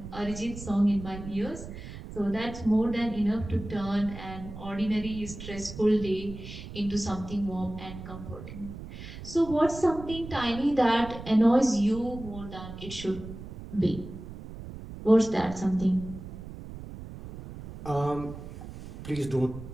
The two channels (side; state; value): right; noise; rumble, 12 dB below the sound